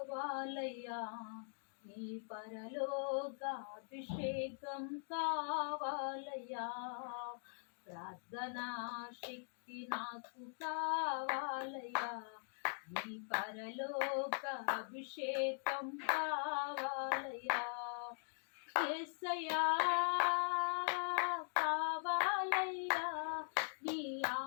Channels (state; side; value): silent; right; digital silence